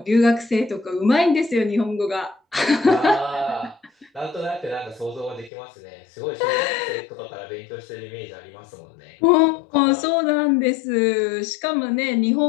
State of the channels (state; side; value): drops out; right; at 5.5 s